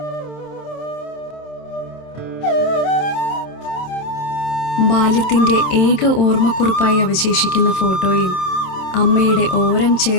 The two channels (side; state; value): right; late; 27 ms